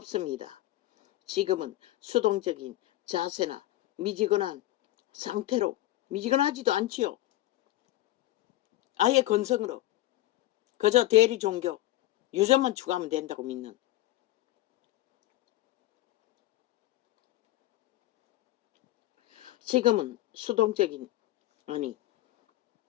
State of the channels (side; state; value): right; quieter; 15.9 dB